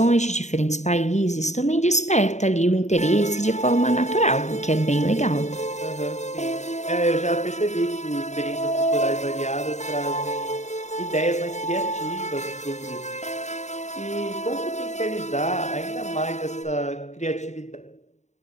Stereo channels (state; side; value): late; right; 0.34 ms